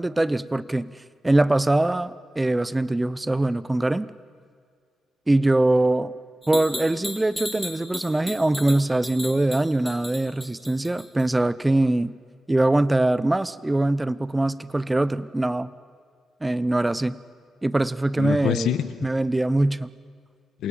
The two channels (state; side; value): normal; both; correlation 0.97